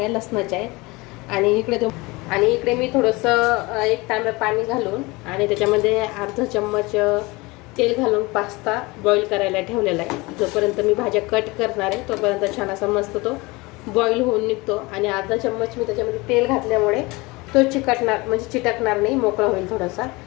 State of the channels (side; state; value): right; quieter; 23.7 dB